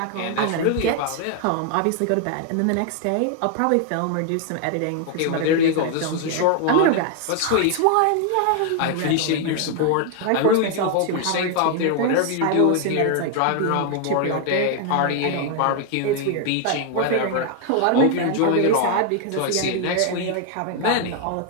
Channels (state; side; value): different; both; correlation 0.00